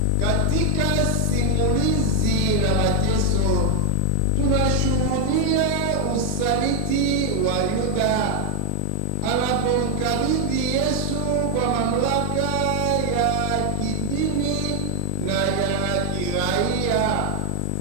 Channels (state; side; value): different; both; correlation 0.00